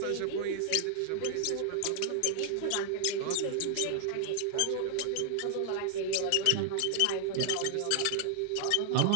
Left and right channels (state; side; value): different; both; correlation 0.00